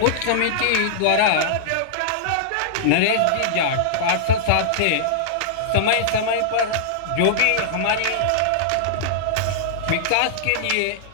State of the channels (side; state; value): both; different; correlation -0.02